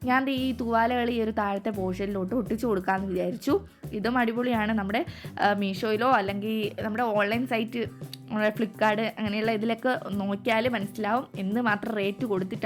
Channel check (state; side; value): identical; both; correlation 1.00